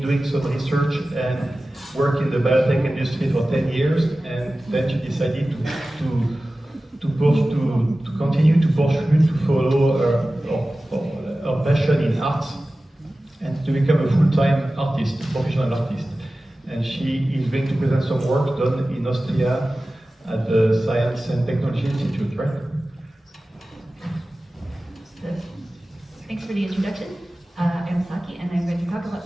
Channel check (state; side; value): normal; both; correlation 0.96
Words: some research and work in the biotech industry for 10 years, and then she decided to continue to pursue, to follow her passion in art, and to become a full-time artist, professional artist. And she is going to present some work done in Austria at the Science and Technology Institute, right? Thanks for the introduction. I'm Saki, and I'm going to talk about